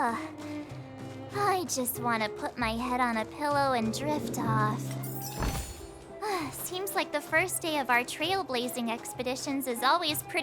I just want to put my head on a pillow and drift off. Seems like the first day of our trailblazing expeditions is always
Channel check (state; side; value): identical; both; correlation 1.00